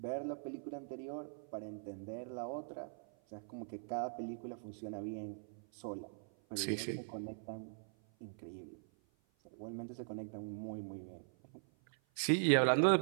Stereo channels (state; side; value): silent; left; 50 dB below the other